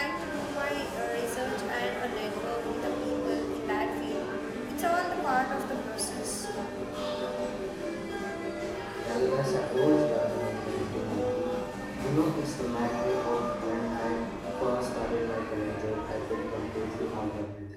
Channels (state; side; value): identical; both; correlation 1.00